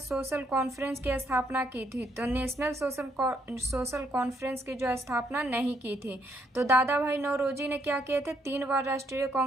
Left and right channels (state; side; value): normal; both; correlation 0.72